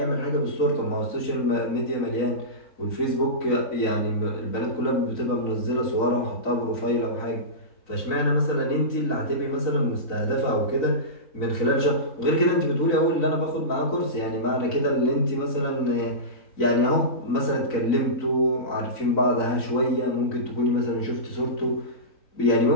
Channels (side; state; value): right; late; 3.9 ms